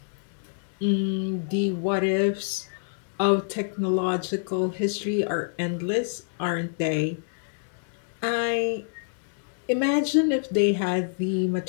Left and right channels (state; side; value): silent; right; digital silence